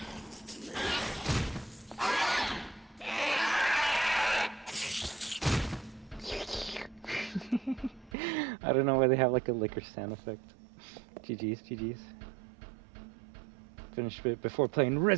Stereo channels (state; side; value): drops out; left; at 8.1 s